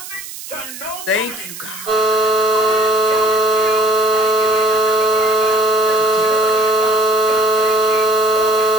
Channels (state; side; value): noise; right; hiss, 13 dB below the sound